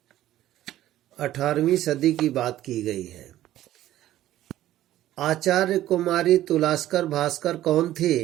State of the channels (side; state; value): left; quieter; 13.7 dB